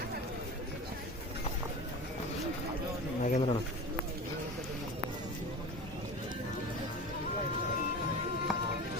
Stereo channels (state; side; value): normal; both; correlation 0.32